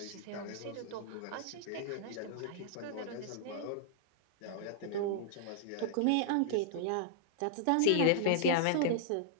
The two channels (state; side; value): different; both; correlation -0.01